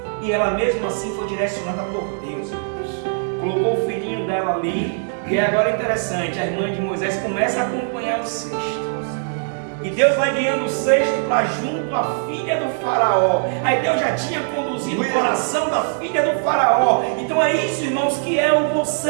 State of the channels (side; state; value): left; silent; digital silence